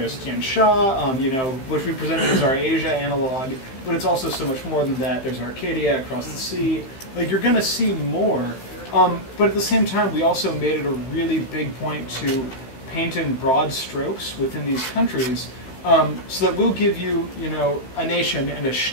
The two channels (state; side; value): late; right; 15 ms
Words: Tian Sha, which we presented as our Asia analog, but it's also so much more than that. There's Arcadia across the sea. Like, you're going to see more. But at the same time, we also made it a really big point to paint in broad strokes within these countries, so that we'll give you, a nation and a